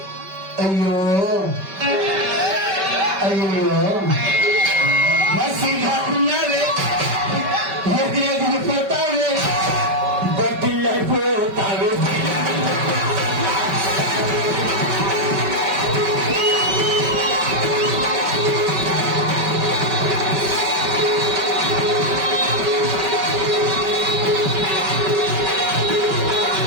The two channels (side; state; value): left; late; 5.2 ms